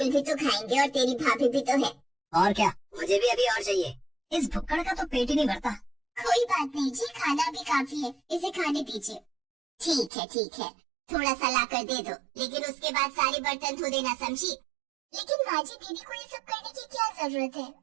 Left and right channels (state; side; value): drops out; left; at 10.1 s